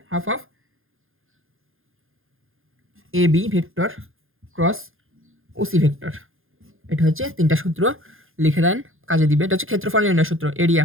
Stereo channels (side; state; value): left; late; 0.60 ms